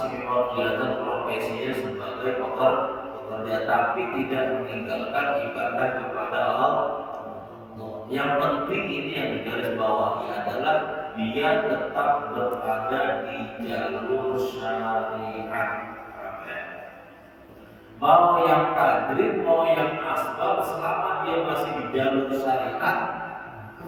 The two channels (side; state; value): both; identical; correlation 1.00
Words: memang kelihatan profesinya sebagai pekerja, tapi tidak meninggalkan ibadah kepada Allah. Yang penting ini yang digarisbawahi adalah dia tetap berada di jalur syariat. Mau yang tajrid, mau yang asbab, selama dia masih di jalur syariat,